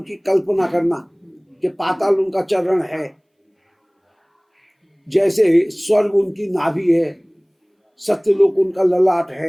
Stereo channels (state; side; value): identical; both; correlation 1.00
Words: की कल्पना करना कि पाताल उनका चरण है, जैसे स्वर्ग उनकी नाभि है, सत्यलोक उनका ललाट